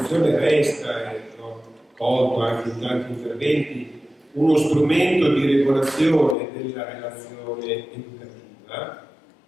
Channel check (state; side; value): drops out; right; at 6.4 s